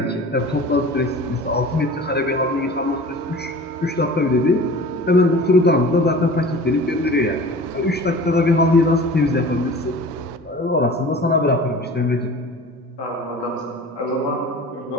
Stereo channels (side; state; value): both; normal; correlation 0.40